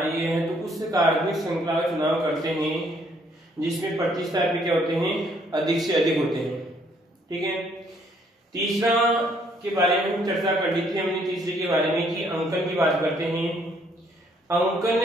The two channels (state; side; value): normal; both; correlation 0.66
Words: है तो उस कार्बनिक श्रृंखला का चुनाव करते हैं जिसमें प्रतिस्थापी क्या होते हैं? अधिक से अधिक होते हैं। ठीक है। तीसरा के बारे में हम चर्चा कर ली थी हमने, तीसरे के बारे में कि अंकन की बात करते हैं। अंकन